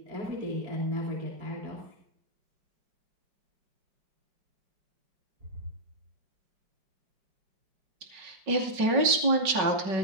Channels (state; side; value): late; left; 5.3 ms